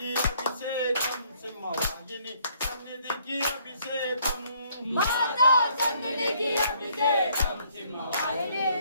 అభిషేకం సింహవాహిని సన్నిధికి అభిషేకం మాతా సన్నిధికి అభిషేకం సింహవాహిని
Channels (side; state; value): both; inverted; correlation -0.65